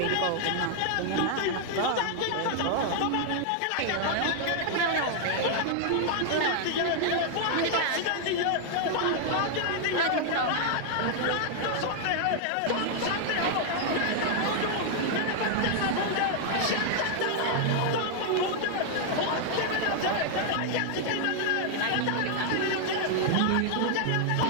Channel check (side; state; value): both; different; correlation 0.00